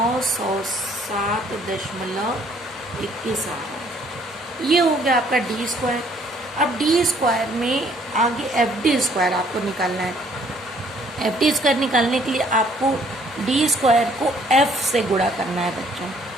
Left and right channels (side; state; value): both; normal; correlation 0.62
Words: आ रहा है। ये हो गया आपका डी स्क्वायर। अब डी स्क्वायर में आगे एफ डी स्क्वायर आपको निकालना है। एफ डी स्क्वायर निकालने के लिए आपको डी स्क्वायर को एफ से गुणा करना है बच्चों।